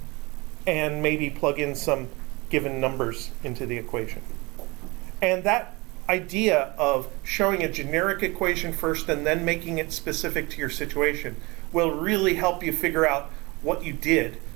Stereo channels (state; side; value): quieter; left; 24.9 dB